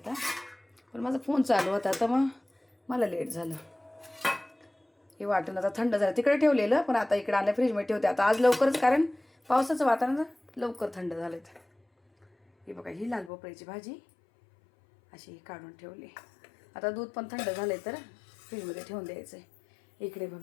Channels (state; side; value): drops out; right; at 13.3 s